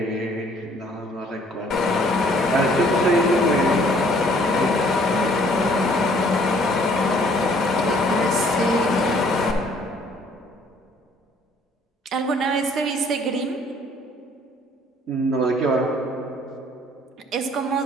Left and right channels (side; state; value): both; normal; correlation 0.60